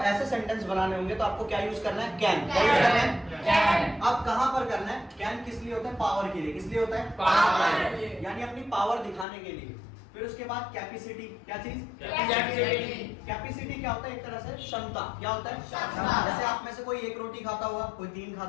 सेंटेंस बनाने होंगे तो आपको क्या यूज करना है, कैन। क्या यूज करना है, कैन। अब कहां पर करना है, कैन किस लिए होता है, पावर के लिए। किस लिए होता है, पावर, यानी अपनी पावर दिखाने के लिए। फिर उसके बाद कैपेसिटी, क्या चीज, कैपेसिटी। कैपेसिटी क्या होता है, एक तरह से क्षमता। क्या होता है क्षमता। जैसे आप में से कोई एक रोटी खाता होगा, कोई 3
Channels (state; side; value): drops out; right; at 9.2 s